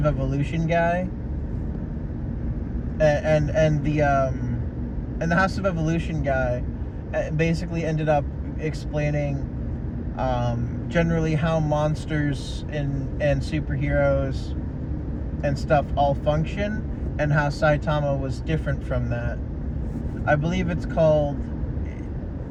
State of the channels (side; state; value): both; identical; correlation 1.00